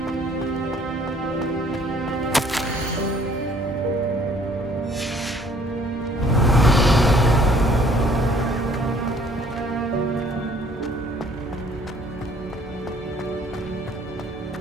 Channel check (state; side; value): normal; both; correlation 0.59